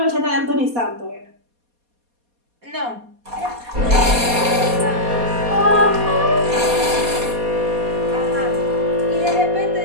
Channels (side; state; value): left; late; 4.2 ms